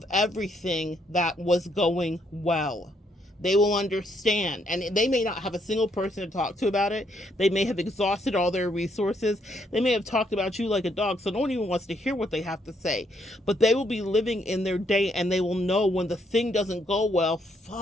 everything that was going well. They will understand, and they may not have a single person to talk to about it. They may have exhausted all their resources. They may have talked about you like a dog, so no one even wants to hear what they have to say. But they will be living in their day, and they will know when the thing doesn't go well,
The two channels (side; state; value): both; normal; correlation 0.73